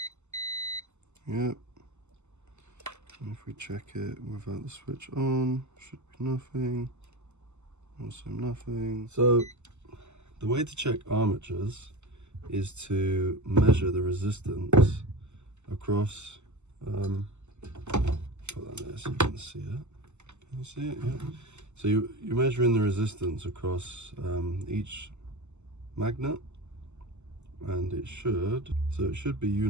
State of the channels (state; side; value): late; left; 0.83 ms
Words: Yep. And if we check it without the switch on, should be nothing. Also nothing. So the way to check armatures is to measure the resistance across. Put that there so you can see it. Can you see it? Yeah. So you're measuring the resistance across each magnet, and it should be